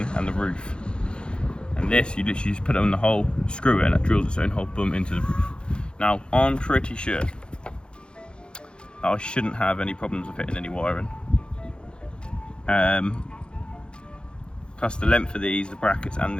and the roof. And this, you literally just put it in the hole, screw it, and it drills its own hole, boom, into the roof. Now, I'm pretty sure I shouldn't have any problems with fitting any wiring. plus the length of these, the brackets and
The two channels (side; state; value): right; late; 0.053 ms